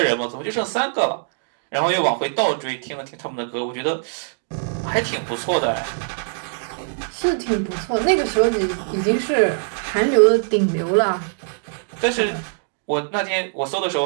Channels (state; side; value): silent; left; digital silence